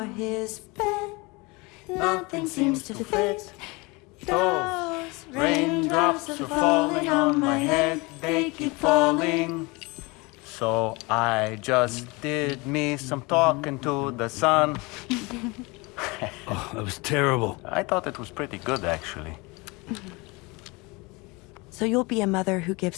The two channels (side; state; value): right; quieter; 25.9 dB